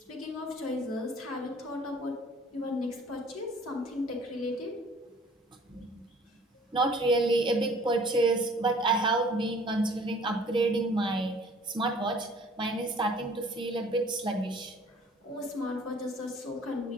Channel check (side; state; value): both; normal; correlation 0.53